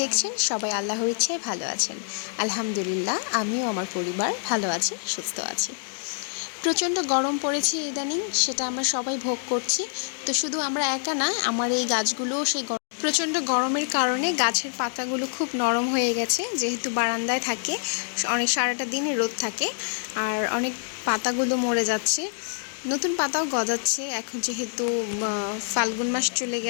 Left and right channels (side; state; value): right; silent; digital silence